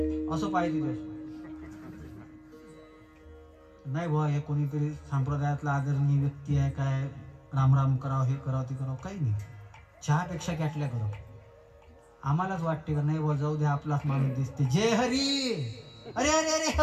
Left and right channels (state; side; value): identical; both; correlation 1.00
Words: असं पाहिजे. नाही बुवा हे कोणीतरी संप्रदायातला आदरणीय व्यक्ती आहे, काय रामराम करावं, हे करावं ते करावं, काही नाही. चहापेक्षा कॅटल्या गरम. आम्हालाच वाटते का नाही बुवा जाऊ दे, आपलाच माणूस दिसते. जय हरी. अरे अरे अरे